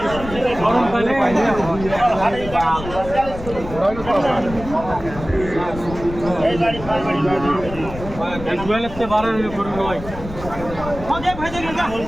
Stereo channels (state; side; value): noise; left; rumble, 11 dB below the sound